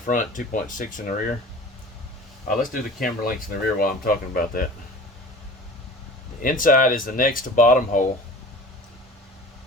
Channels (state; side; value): normal; both; correlation 0.41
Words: 2.6 in the rear. Let's do the Camber Links in the rear while I'm talking about that. The inside is the next to bottom hole,